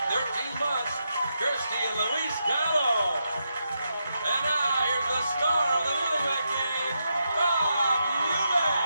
13 months, Kirsty and Luis Gallo. And now here's the star of the Newlywed Game, Bob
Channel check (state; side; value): inverted; both; correlation -0.84